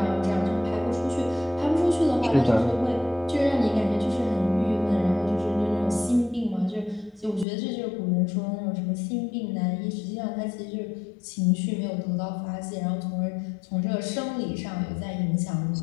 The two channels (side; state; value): right; drops out; at 7.5 s